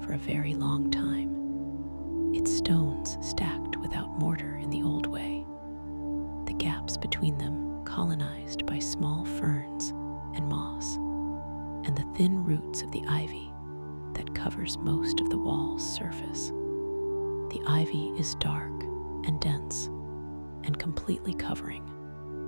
for a very long time. Its stones stacked without mortar in the old way, the gaps between them colonized by small ferns and moss, and the thin roots of the ivy that covers most of the wall's surface. The ivy is dark and dense and completely covering.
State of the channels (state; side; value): inverted; both; correlation -1.00